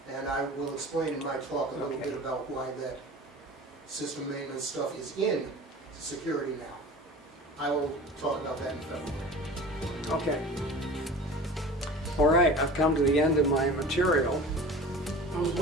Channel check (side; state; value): both; normal; correlation 0.38